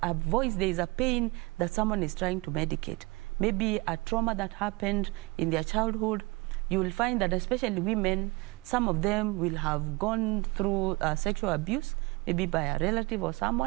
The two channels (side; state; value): left; quieter; 24.7 dB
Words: voice, there is a pain that someone is trying to medicate. Maybe a trauma that happened in their childhood. You will find that especially women, some of them will have gone through sexual abuse, maybe by a relative or